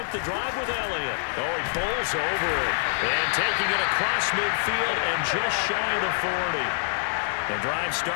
the drive with Elliott. Oh, he bowls over it. And taking it across midfield and just shy of the 40. The drive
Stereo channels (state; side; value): silent; right; digital silence